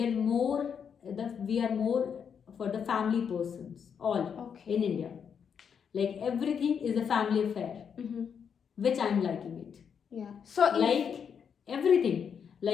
are more for the family persons, all. Okay. In India, like everything is a family affair, which I'm liking it. Yeah. So Like everything,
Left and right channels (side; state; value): right; quieter; 7.2 dB